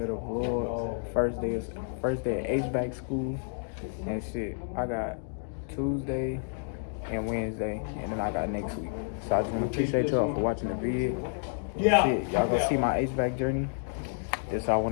the vlog. First day at HVAC school, and shit. I got Tuesday and Wednesday, and then I got next week. So I just want to appreciate y'all for watching the video. Yeah. Shit, y'all gonna see my HVAC journey. This what I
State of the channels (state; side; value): silent; right; digital silence